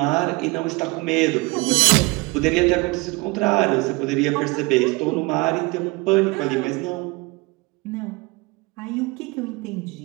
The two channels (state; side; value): quieter; left; 25.0 dB